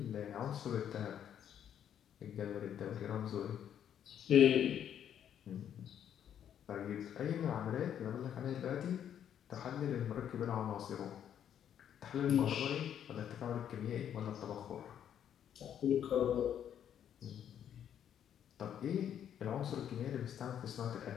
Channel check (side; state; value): right; quieter; 9.5 dB